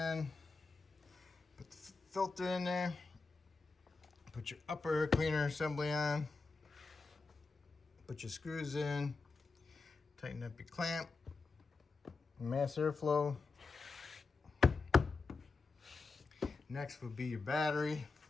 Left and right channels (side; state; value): right; quieter; 4.1 dB